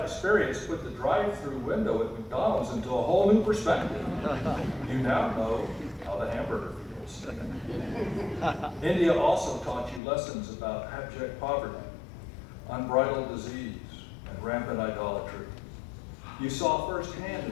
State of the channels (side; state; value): right; drops out; at 10.0 s